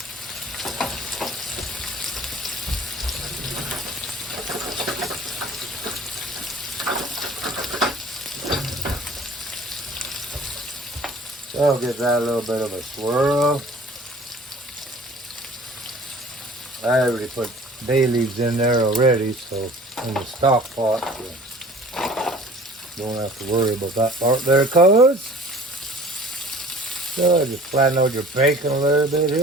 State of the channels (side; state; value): both; normal; correlation 0.48